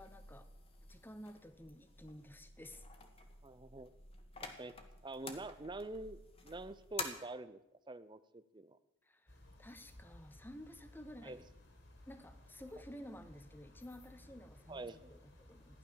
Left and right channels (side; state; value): both; normal; correlation 0.45